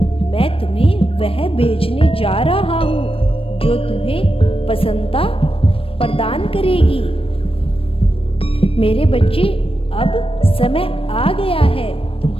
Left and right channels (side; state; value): right; late; 0.27 ms